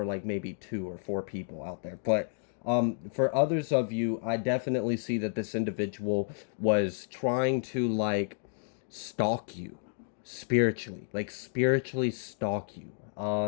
like maybe 2 or 4 people out there. But for others of you, I definitely see that this individual was trying to like stalk you spiritually, like spiritually stalk you.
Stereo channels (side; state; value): right; silent; digital silence